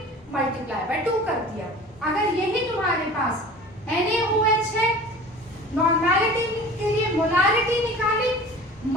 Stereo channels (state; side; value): normal; both; correlation 0.41